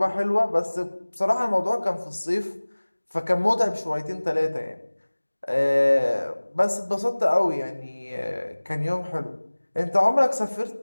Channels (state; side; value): inverted; both; correlation -1.00